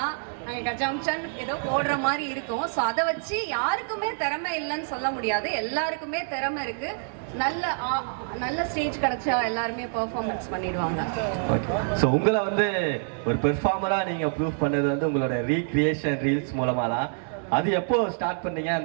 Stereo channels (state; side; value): silent; left; 60 dB below the other